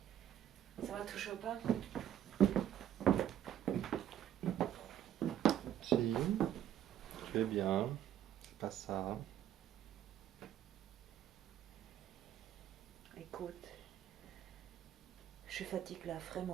Ça va toujours pas? Si, tu es bien, c'est pas ça. Écoute, je fatigue là,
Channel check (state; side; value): quieter; left; 10.9 dB